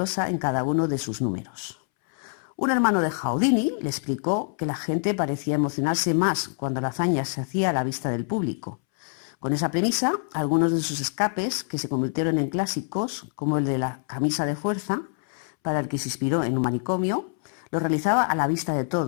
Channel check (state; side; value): silent; right; 61 dB below the other